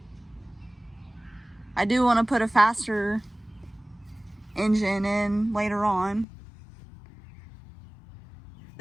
I do want to put a faster engine in later on.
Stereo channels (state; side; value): drops out; right; at 6.2 s